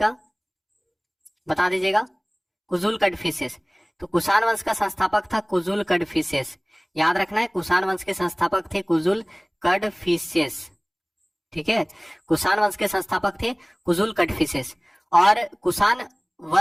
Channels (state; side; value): identical; both; correlation 1.00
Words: बता दीजिएगा। कुजुल कड़फिसेस। तो कुषाण वंश का संस्थापक था कुजुल कड़फिसेस। याद रखना है, कुषाण वंश के संस्थापक थे कुजुल कड़फिसेस। ठीक है, कुषाण वंश के संस्थापक थे कुजुल कड़फिसेस। और कुषाण